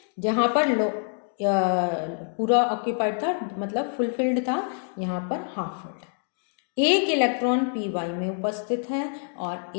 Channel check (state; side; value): silent; right; 61 dB below the other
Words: जहां पर पूरा ऑक्यूपाइड था मतलब फुलफिल्ड था, यहाँ पर हाफ फील्ड। एक इलेक्ट्रॉन पी वाई में उपस्थित है और